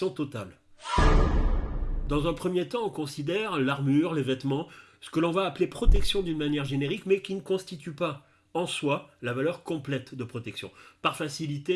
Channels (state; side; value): identical; both; correlation 1.00